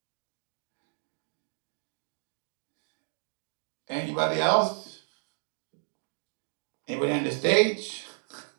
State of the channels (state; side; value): silent; left; 56 dB below the other